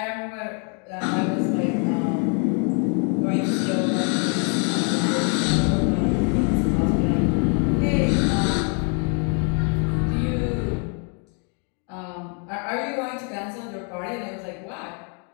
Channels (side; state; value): right; quieter; 39.4 dB